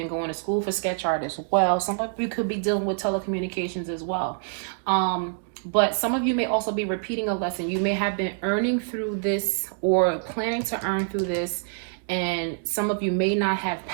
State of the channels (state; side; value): silent; left; digital silence